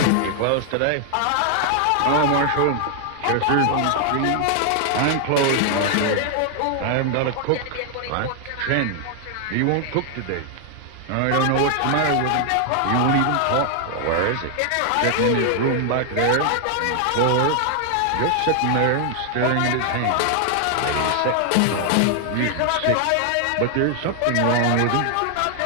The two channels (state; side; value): different; both; correlation 0.00